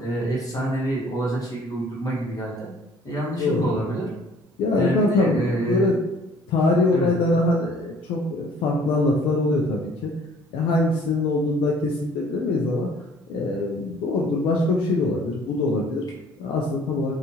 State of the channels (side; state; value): both; normal; correlation 0.55